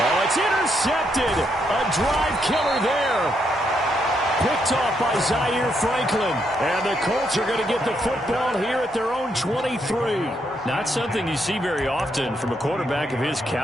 it's intercepted. A drive killer there. Picked off by Zaire Franklin. And the Colts are going to get the football here at their own 23. Not something you see very often from a quarterback of his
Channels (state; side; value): normal; both; correlation 0.77